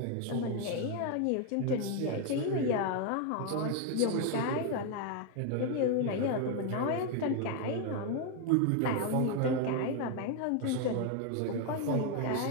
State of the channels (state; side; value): different; both; correlation 0.01